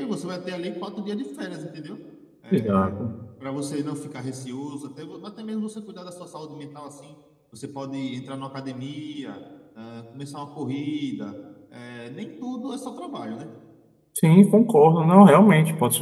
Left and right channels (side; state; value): both; identical; correlation 1.00